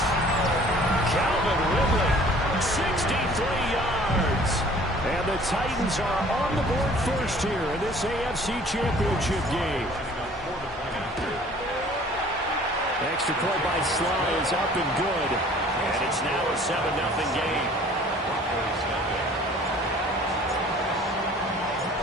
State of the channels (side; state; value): both; normal; correlation 0.52